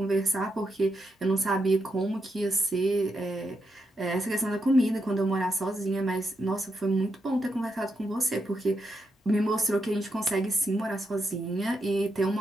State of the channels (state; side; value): normal; both; correlation 0.83